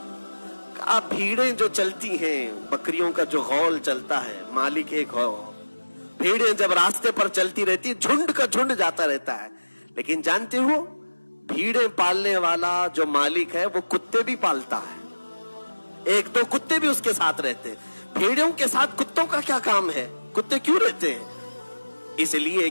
कहा भीड़ें जो चलती हैं, बकरियों का जो गौल चलता है, मालिक एक हो, भीड़ें जब रास्ते पर चलती रहती, झुंड का झुंड जाता रहता है। लेकिन जानते हो भीड़ें पालने वाला जो मालिक है वो कुत्ते भी पालता है, एक दो कुत्ते भी उसके साथ रहते हैं। भीड़ों के साथ कुत्तों का क्या काम है? कुत्ते क्यों रहते हैं? इसलिए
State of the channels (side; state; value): both; inverted; correlation -1.00